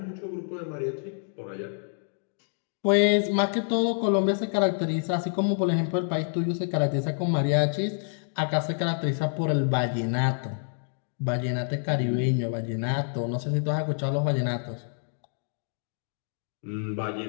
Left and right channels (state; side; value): silent; right; digital silence